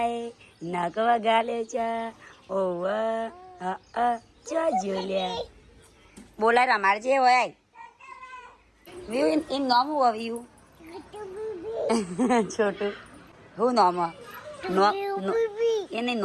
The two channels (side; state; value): both; identical; correlation 1.00